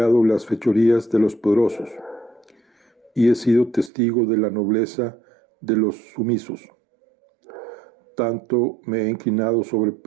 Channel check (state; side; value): drops out; left; at 3.9 s